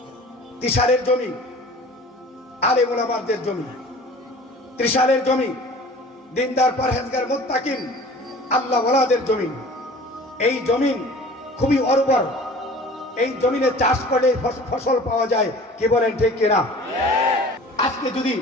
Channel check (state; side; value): normal; both; correlation 0.44